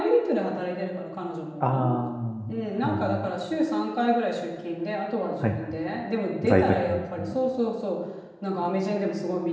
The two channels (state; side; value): identical; both; correlation 1.00